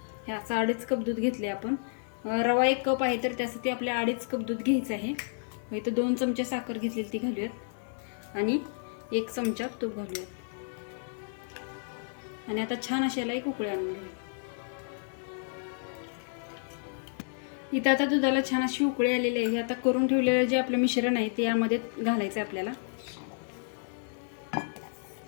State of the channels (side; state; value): right; silent; digital silence